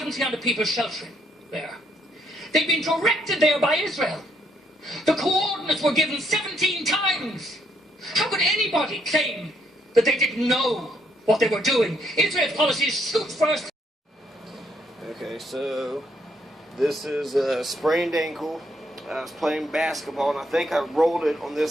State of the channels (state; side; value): normal; both; correlation 0.72